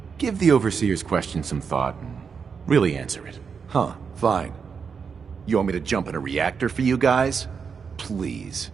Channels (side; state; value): left; quieter; 6.0 dB